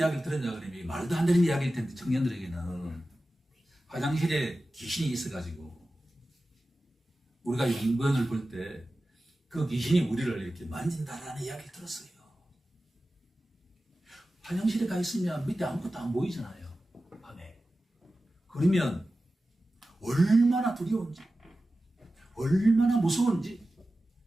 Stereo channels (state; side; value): normal; both; correlation 0.94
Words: 들었냐 그러면 말도 안 되는 이야기일 텐데 청년들에게는 화장실에 귀신이 있어가지고 우리가 용변을 볼 때 그 귀신이 우리를 이렇게 만진다라는 이야기를 들었어요. 화장실에 가 있으면 밑에 아무것도 안 보이잖아요. 밤에. 그러면 얼마나 두려운지 얼마나 무서운지